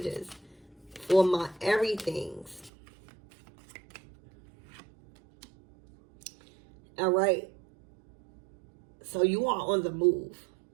for my everythings. All right. So you are on the move.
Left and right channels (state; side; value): drops out; left; at 2.7 s